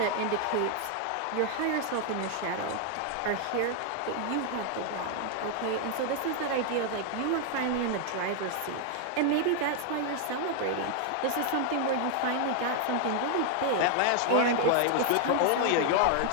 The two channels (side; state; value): both; different; correlation 0.00